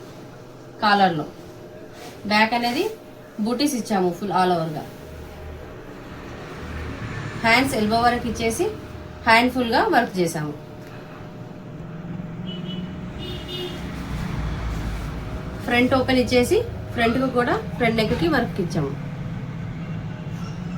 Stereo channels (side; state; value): both; identical; correlation 1.00